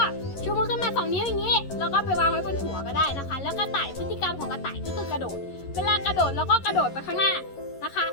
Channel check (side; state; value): right; late; 11 ms